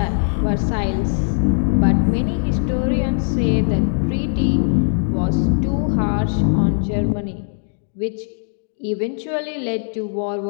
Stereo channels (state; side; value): silent; right; 61 dB below the other